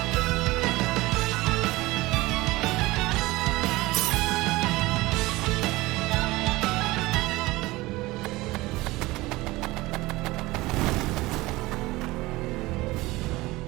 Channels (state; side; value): quieter; left; 20.1 dB